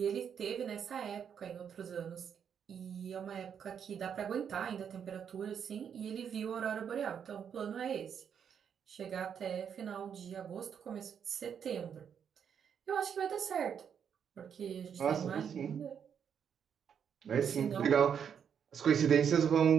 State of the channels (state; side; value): quieter; left; 7.8 dB